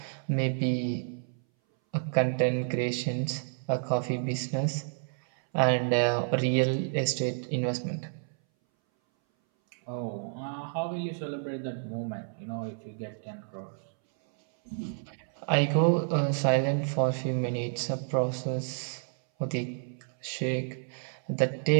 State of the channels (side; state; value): left; silent; 58 dB below the other